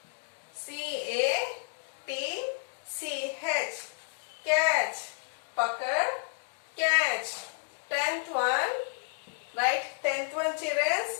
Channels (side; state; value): right; silent; digital silence